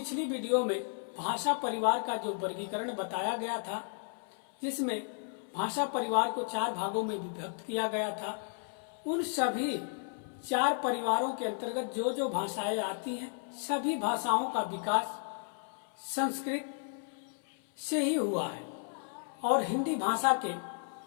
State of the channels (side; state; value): right; silent; 55 dB below the other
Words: वीडियो में भाषा परिवार का जो वर्गीकरण बताया गया था, जिसमें भाषा परिवार को 4 भागों में विभक्त किया गया था, उन सभी 4 परिवारों के अंतर्गत जो जो भाषाएं आती हैं, सभी भाषाओं का विकास संस्कृत से ही हुआ है। और हिंदी भाषा के